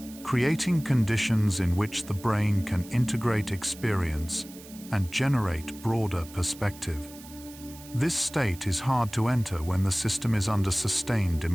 creating conditions in which the brain can integrate experience and generate broader perspective. This state is hard to enter when the system is under sustained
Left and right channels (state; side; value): noise; right; hiss, 19 dB below the sound